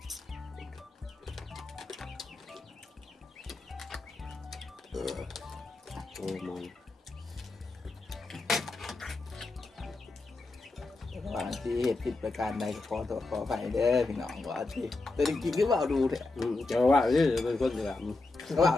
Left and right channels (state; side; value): quieter; right; 3.4 dB